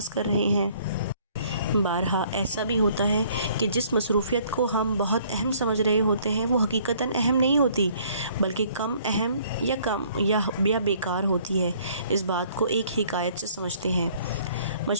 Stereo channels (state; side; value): inverted; both; correlation -0.60